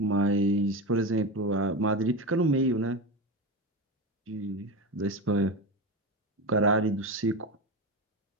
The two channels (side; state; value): both; normal; correlation 0.20